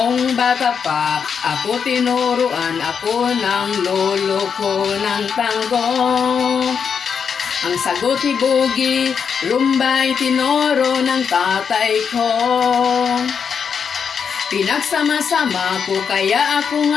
bata pa, ako tinuruan ako ng lolo ko ng tango. Ang sagot ni Boogie, rumba'y tinuro ng tatay ko. Pinagsama-sama ko kaya ako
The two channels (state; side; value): quieter; right; 6.6 dB